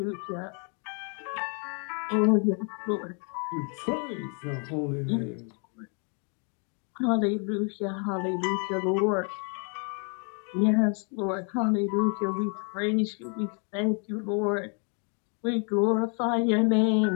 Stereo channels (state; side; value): quieter; right; 39.1 dB